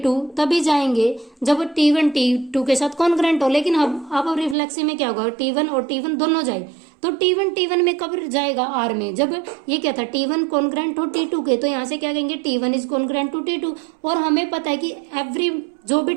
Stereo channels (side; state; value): left; drops out; at 4.5 s